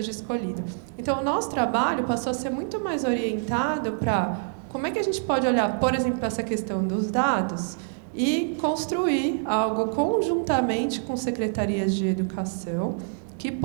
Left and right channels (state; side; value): silent; left; digital silence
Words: escolhido. Então, o nosso trabalho passou a ser muito mais orientado para como é que a gente pode olhar, por exemplo, para essa questão dos dados e construir algo conjuntamente com secretarias de educação que